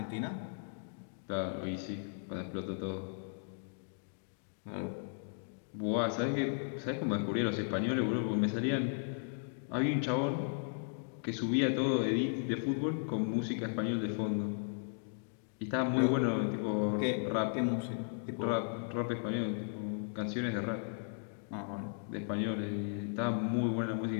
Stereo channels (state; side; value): silent; right; digital silence